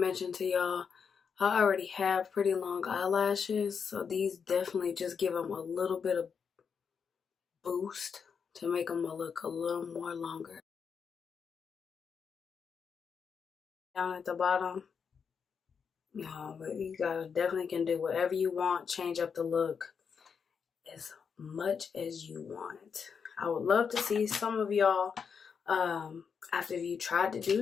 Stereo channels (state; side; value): quieter; right; 6.3 dB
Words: to y'all, I already have pretty long eyelashes, so these definitely just give them a little bit of boost to make them look a little more longer. Down at the bottom, no, but you guys definitely can do whatever you want, change up the look as much as you want. I would love to see some of y'all after you tried to